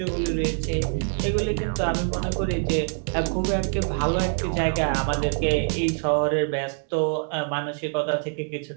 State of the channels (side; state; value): left; silent; digital silence